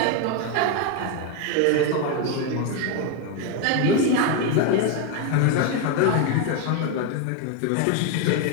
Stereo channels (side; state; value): both; different; correlation 0.02